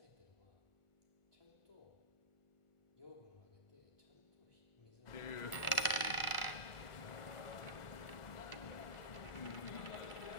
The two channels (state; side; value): late; right; 1.4 ms